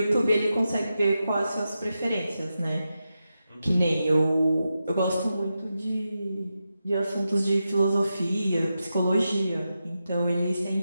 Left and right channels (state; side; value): inverted; both; correlation -0.89